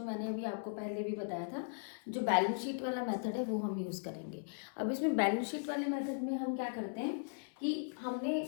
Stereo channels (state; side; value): silent; right; 52 dB below the other